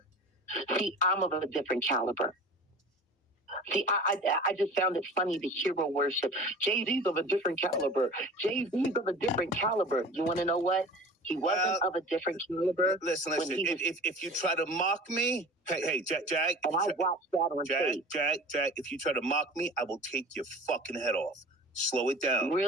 Okay. See, I'm of a different caliber. See, I just found it funny, the hero worship. Jay-Z's of a different caliber. Jay-Z's of a different caliber. You want to know what? He wasn't of a different caliber. Listen. If you try to mock me, hey, Jack. And I watched that on tape. Jack, if you try to mock me, I will take your fucking head off. Slow it down.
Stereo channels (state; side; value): normal; both; correlation 0.39